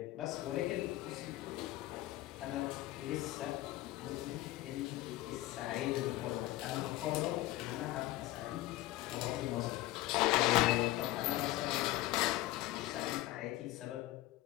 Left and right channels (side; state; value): right; quieter; 16.8 dB